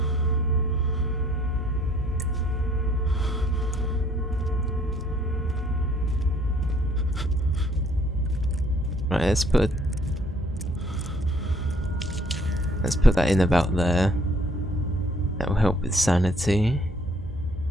Right, let's put that in about there. That will help with sanity.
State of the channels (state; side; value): normal; both; correlation 0.62